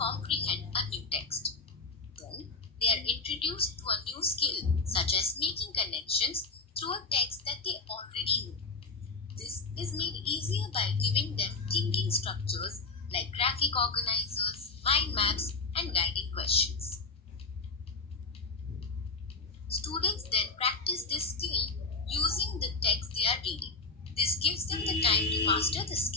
a new text. Then, they are introduced to a new skill such as making connections through a text that they already know. This is made easier by giving them thinking structures like graphic organizers, mind maps, and guiding questions. Students then practice this skill using the text they are reading. This gives them the time to master the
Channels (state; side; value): quieter; right; 4.0 dB